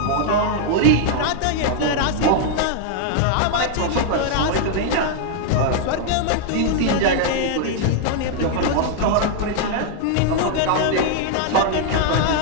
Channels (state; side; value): different; both; correlation 0.00